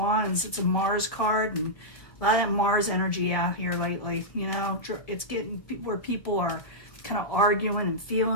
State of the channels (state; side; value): late; right; 1.7 ms